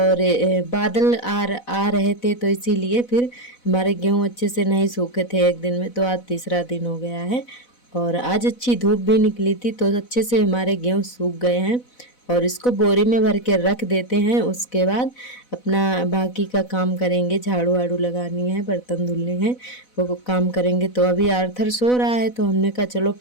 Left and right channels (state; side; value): late; right; 4.0 ms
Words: बादल आ रहे थे, तो इसीलिए फिर हमारे गेहूँ अच्छे से नहीं सूखे थे एक दिन में। तो आज तीसरा दिन हो गया है और आज अच्छी धूप भी निकली थी, तो अच्छे से हमारे गेहूँ सूख गए हैं। और इसको बोरी में भर के रख देते हैं। उसके बाद अपना बाकी का काम करेंगे। झाड़ू वाड़ू लगानी है, बर्तन धुलने हैं, वो काम करेंगे। तो अभी आर्थर सो रहा है, तो हमने कहा चलो